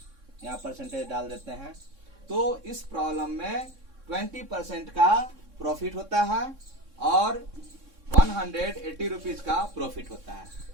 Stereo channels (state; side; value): late; left; 3.6 ms